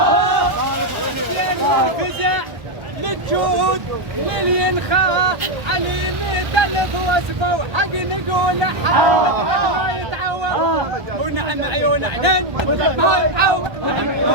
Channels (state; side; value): late; left; 1.4 ms